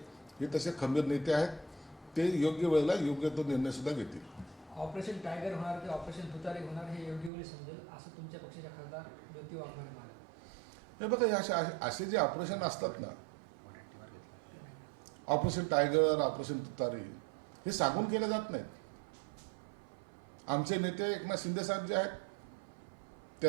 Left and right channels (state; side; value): drops out; left; at 7.3 s